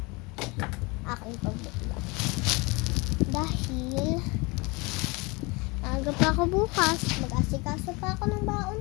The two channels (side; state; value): right; quieter; 26.6 dB